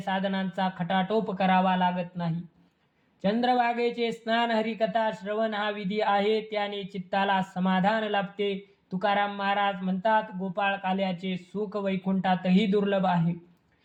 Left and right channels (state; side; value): identical; both; correlation 1.00